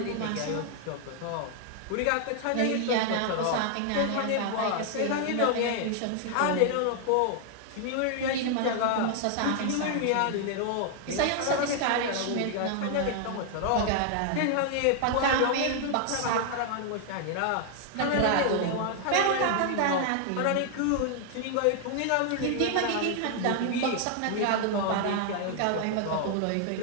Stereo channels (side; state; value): both; different; correlation 0.00